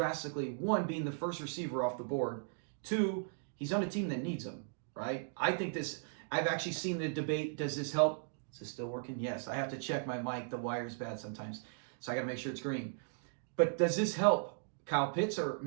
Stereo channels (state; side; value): silent; left; digital silence